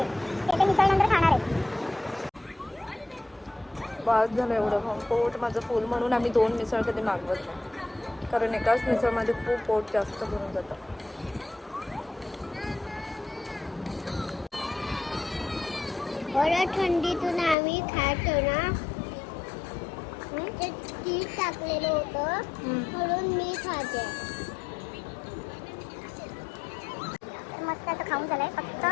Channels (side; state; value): right; drops out; at 17.6 s